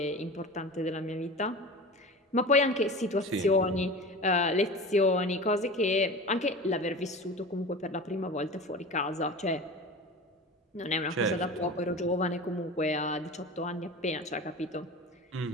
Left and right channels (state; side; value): normal; both; correlation 0.34